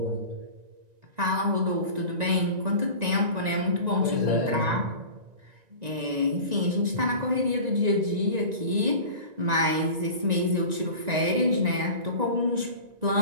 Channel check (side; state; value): left; late; 1.9 ms